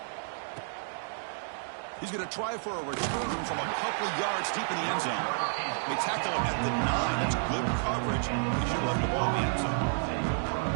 He's going to try for a return from a couple yards deep in the end zone. They tackle him at the 9. That's good coverage. He should let the ball in the end zone.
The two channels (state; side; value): silent; left; digital silence